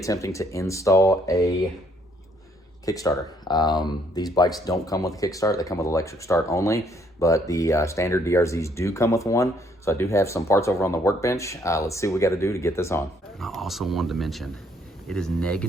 to install a Kickstarter. These bikes don't come with a kickstart, they come with electric start only, but the standard DRZs do come with one. So I do have some parts over on the workbench. Let's see what we got to do to get this on. I also wanted to mention, it is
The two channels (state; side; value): normal; both; correlation 0.67